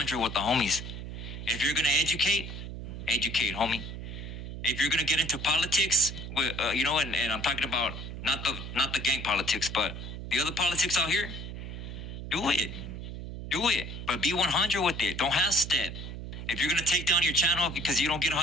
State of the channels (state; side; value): noise; right; hum, 8 dB below the sound